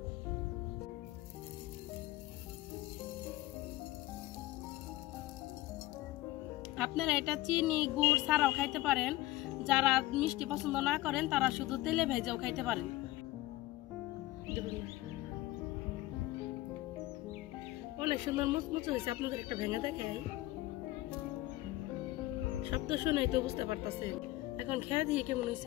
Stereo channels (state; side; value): quieter; right; 17.7 dB